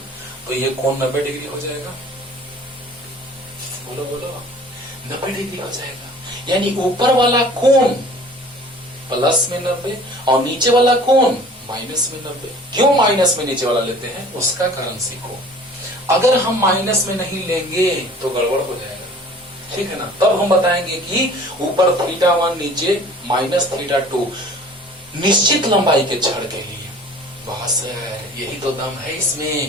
तो ये कोण 90 डिग्री हो जाएगा। बोलो बोलो, 90 डिग्री हो जाएगा। यानी ऊपर वाला कोण प्लस में 90 और नीचे वाला कोण माइनस में 90। क्यों माइनस में नीचे वाला लेते हैं, उसका कारण सीखो। अगर हम माइनस में नहीं लेंगे तो गड़बड़ हो जाएगा, ठीक है ना। तब हम बताएंगे कि ऊपर θ1 नीचे माइनस θ2 निश्चित लंबाई के छड़ के लिए। बस यही तो दम है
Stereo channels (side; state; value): both; normal; correlation 0.47